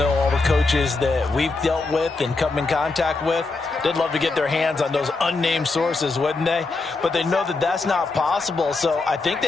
all the coaches that we've dealt with and come in contact with. They'd love to get their hands on those unnamed sources, wouldn't they? But they know that that's not possible, so I think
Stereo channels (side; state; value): right; quieter; 3.7 dB